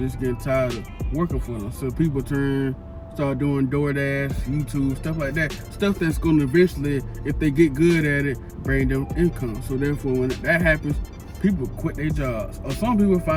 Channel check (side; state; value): both; identical; correlation 1.00